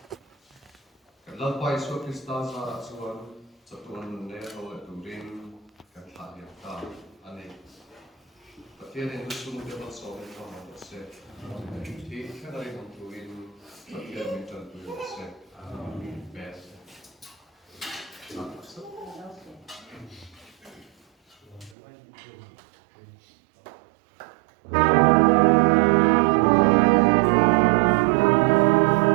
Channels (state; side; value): drops out; left; at 21.8 s